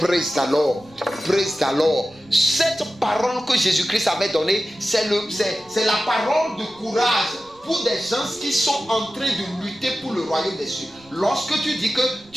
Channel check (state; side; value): noise; right; rumble, 29 dB below the sound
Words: the Lord. Praise the Lord. Cette parole que Jésus-Christ avait donnée, c'est la parole de courage pour des gens qui sont en train de lutter pour le royaume des cieux. Lorsque tu dis que